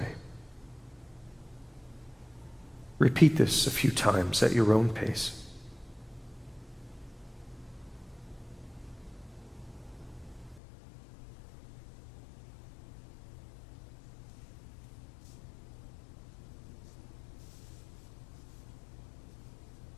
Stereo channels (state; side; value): drops out; right; at 10.6 s